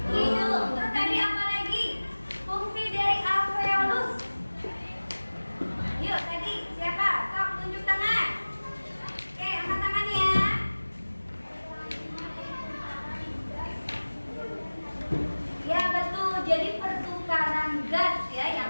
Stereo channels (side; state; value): both; inverted; correlation -1.00